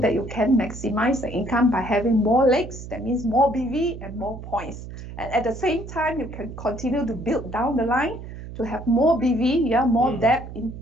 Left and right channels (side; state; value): right; noise; hum, 12 dB below the sound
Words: you can maximize the income by having more legs. That means more BV and more points. And at the same time, you can continue to build down the line to have more BV, yeah, more depth in